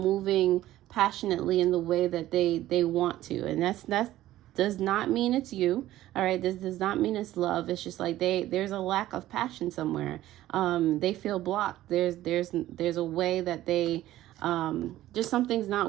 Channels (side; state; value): left; quieter; 14.6 dB